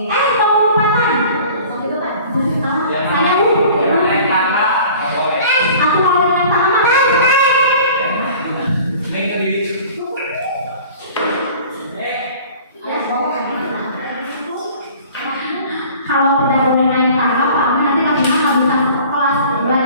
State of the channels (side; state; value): both; inverted; correlation -0.46